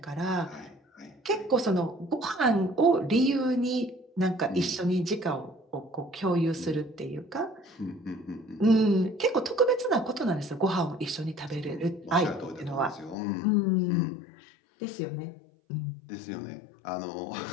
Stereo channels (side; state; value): right; drops out; at 13.2 s